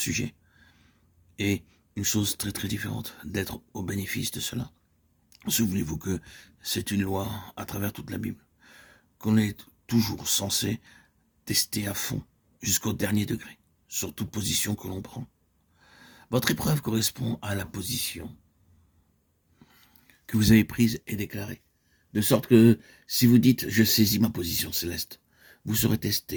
et une chose très très différente, d'être au bénéfice de cela. Souvenez-vous que c'est une loi à travers toute la Bible, qu'on est toujours censé tester à fond, jusqu'au dernier degré, sur toute position que l'on prend. Votre épreuve correspond à la position que vous avez prise et déclarée. De sorte que si vous dites « je saisis ma position céleste », vous serez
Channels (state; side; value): identical; both; correlation 1.00